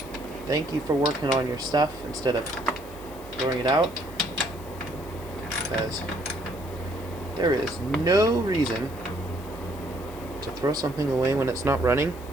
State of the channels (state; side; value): noise; left; hiss, 21 dB below the sound